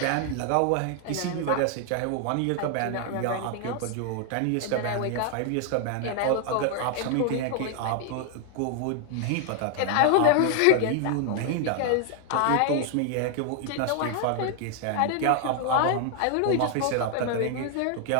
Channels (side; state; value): both; different; correlation 0.00